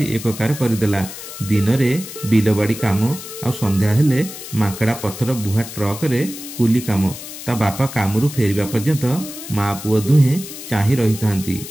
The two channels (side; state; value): left; noise; hiss, 12 dB below the sound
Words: एककार करदेला। दिन रे बिलबाड़ी काम आ संध्या हेले मांकड़ा पत्थर बुहा ट्रक रे कुली काम। ता बापा कामरू फेरिबा पर्यंत माँ पुओ दुहे चाही रही थांती।